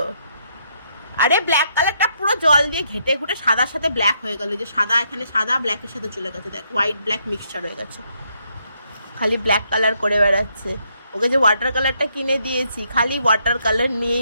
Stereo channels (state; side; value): inverted; both; correlation -0.75